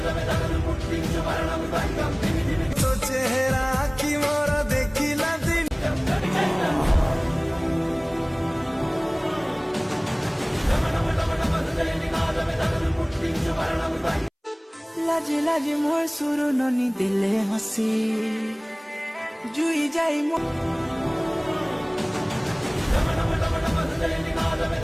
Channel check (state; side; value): identical; both; correlation 1.00